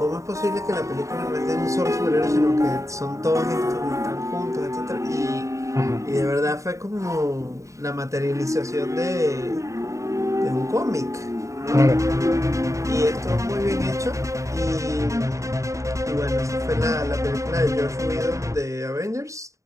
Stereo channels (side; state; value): left; late; 0.15 ms